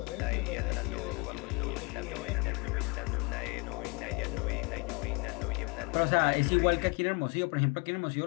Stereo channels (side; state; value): right; quieter; 29.1 dB